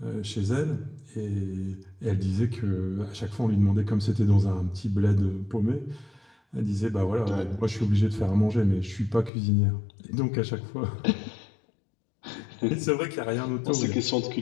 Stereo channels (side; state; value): right; drops out; at 9.3 s